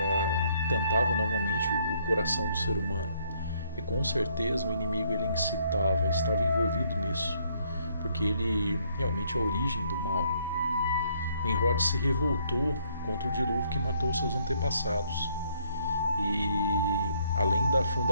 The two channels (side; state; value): both; inverted; correlation -0.68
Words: tentava novamente o coração do ser humano. E com certeza o inimigo ele incitava, estava envolvido nisso, porque ele realmente é a origem do mal. Nimrod se revoltou contra o dilúvio que matou seus antepassados. E além da